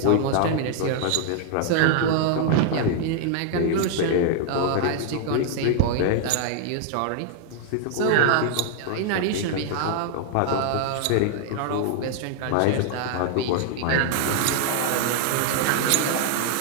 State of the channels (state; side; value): different; both; correlation 0.00